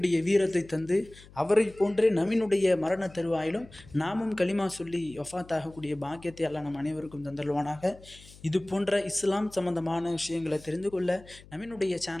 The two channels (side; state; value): left; noise; hum, 22 dB below the sound